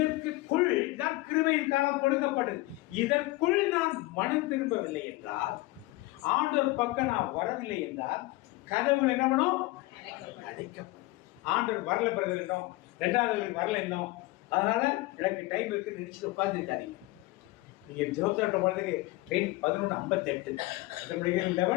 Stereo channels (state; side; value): quieter; right; 20.3 dB